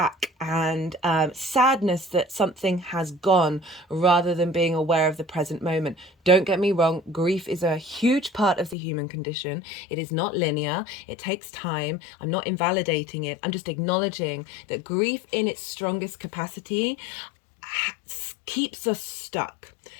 and sadness that something has gone, rather than being aware of the present moment. Don't get me wrong, grief is a huge part of the human condition. It is not linear. It takes time. I'm not invalidating it. I'm just acknowledging that grief in its strongest capacity keeps us stuck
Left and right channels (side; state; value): right; drops out; at 8.8 s